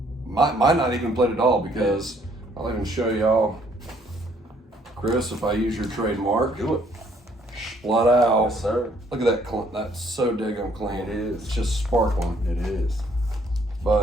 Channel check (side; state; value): both; normal; correlation 0.64